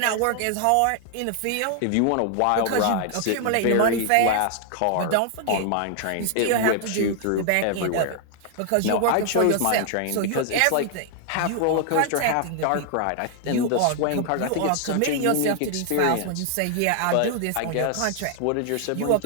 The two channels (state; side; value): different; both; correlation 0.00